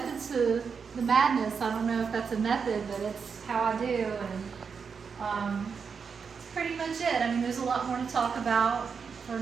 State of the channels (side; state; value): left; quieter; 5.9 dB